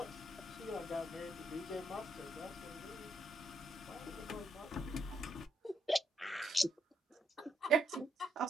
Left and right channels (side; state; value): both; normal; correlation 0.76